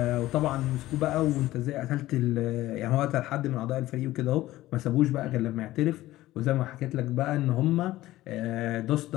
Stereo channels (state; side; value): quieter; right; 16.1 dB